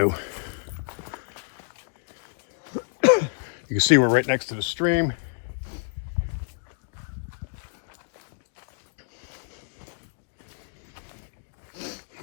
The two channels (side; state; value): right; silent; digital silence